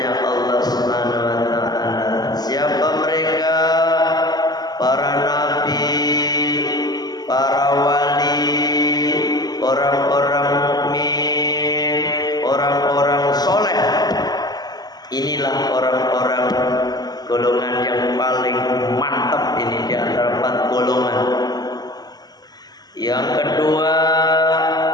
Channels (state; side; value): late; right; 0.20 ms